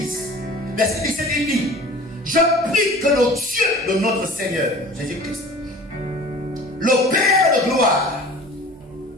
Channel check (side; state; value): both; normal; correlation 0.43